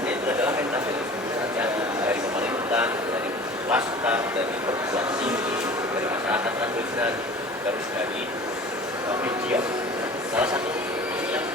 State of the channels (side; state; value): both; normal; correlation 0.42